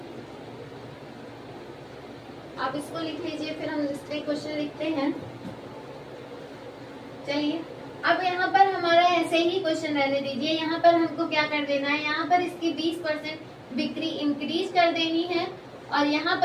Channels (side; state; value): both; identical; correlation 1.00